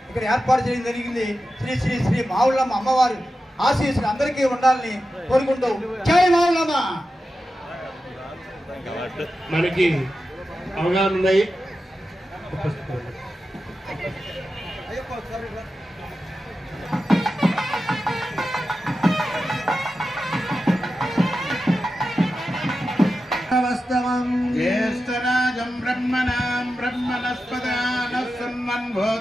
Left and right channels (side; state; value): both; normal; correlation 0.92